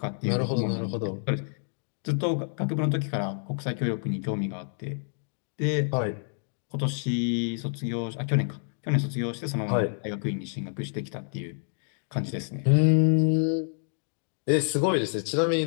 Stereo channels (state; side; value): silent; right; digital silence